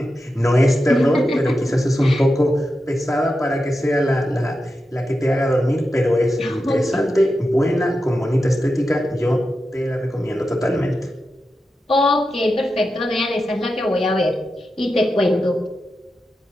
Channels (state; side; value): normal; both; correlation 0.90